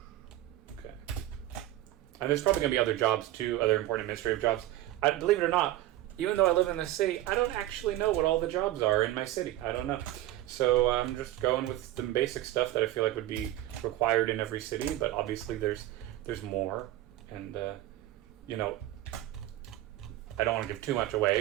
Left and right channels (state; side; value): quieter; left; 14.8 dB